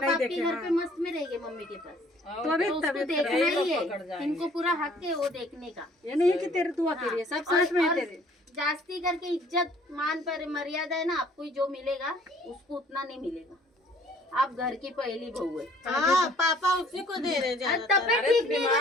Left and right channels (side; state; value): both; normal; correlation 0.57